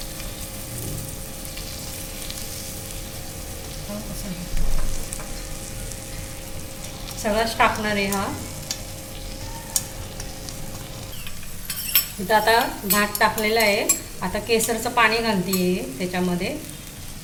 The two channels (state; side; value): identical; both; correlation 1.00